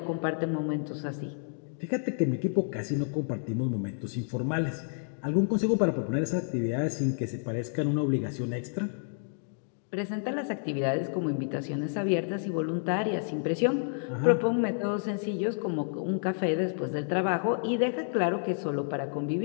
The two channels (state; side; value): silent; right; digital silence